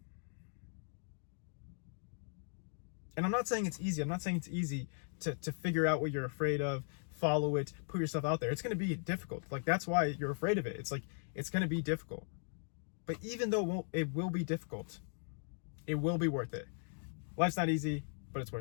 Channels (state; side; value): silent; right; digital silence